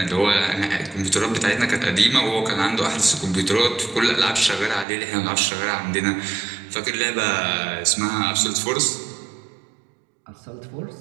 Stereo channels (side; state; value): left; drops out; at 4.9 s